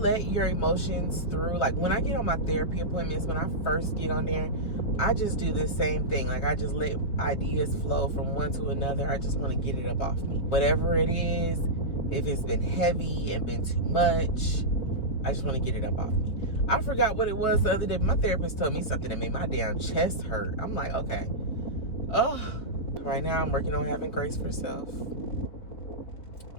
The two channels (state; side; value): late; right; 4.4 ms